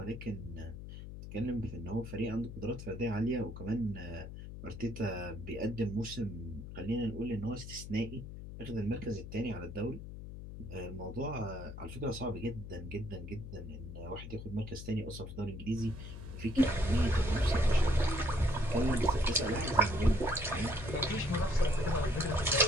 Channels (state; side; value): noise; left; hum, 10 dB below the sound